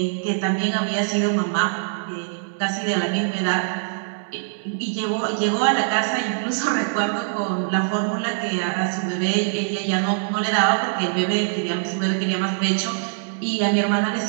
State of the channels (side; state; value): left; silent; digital silence